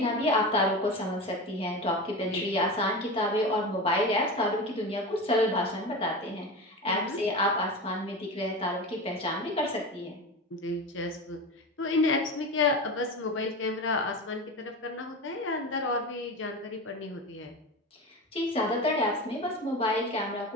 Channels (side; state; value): both; normal; correlation 0.26